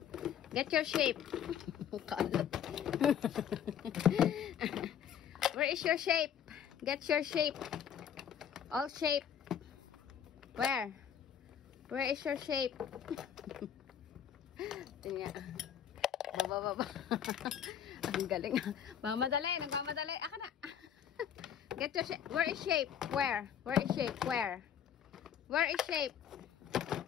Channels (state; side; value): quieter; right; 9.0 dB